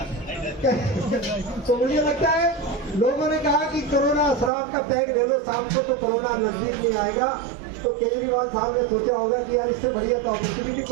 तो मुझे लगता है लोगों ने कहा कि कोरोना शराब का पैक ले लो, शाम को तो कोरोना नजदीक नहीं आएगा। तो केजरीवाल साहब ने सोचा होगा कि यार इससे बढ़िया तो अपॉर्चुनिटी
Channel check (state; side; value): drops out; left; at 4.5 s